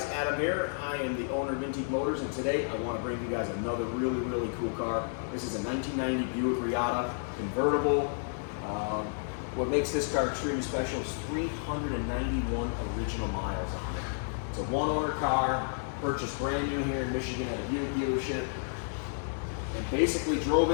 Adam here. I am the owner of Vintique Motors, and today I want to bring you guys another really cool car. This is a 1990 Buick Reatta Convertible. What makes this car extremely special is 391 original miles on it. It's a one-owner car, purchased brand new here in Michigan at a Buick dealership, and basically drove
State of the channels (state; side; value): silent; right; digital silence